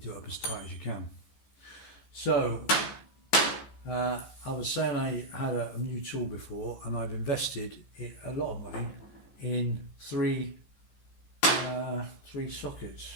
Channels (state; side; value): late; right; 14 ms